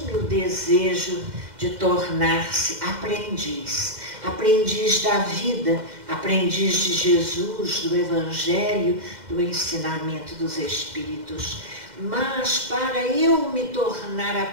o desejo de tornar-se aprendiz, aprendiz da vida, aprendiz de Jesus, do Evangelho, do ensinamento dos Espíritos. Mas para eu me tornar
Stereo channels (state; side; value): late; left; 2.1 ms